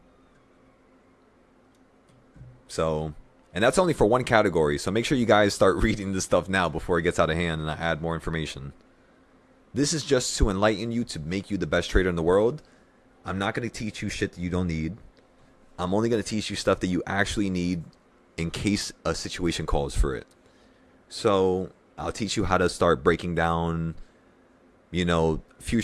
So, and that's only for one category. So make sure you guys start reading this stuff now before it gets out of hand and I add more information. This is just to enlighten you, to make you the best trader in the world. I'm not going to teach you shit that you don't need. I'm only going to teach you stuff that you actually need in case a situation calls for it. So I'll teach you how to start breaking down,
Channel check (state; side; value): identical; both; correlation 1.00